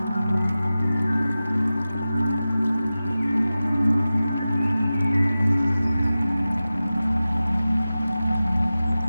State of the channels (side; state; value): both; inverted; correlation -0.95